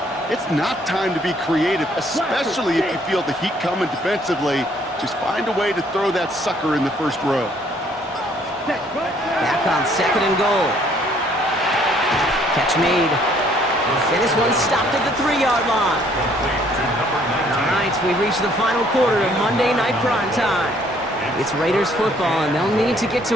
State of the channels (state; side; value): normal; both; correlation 0.63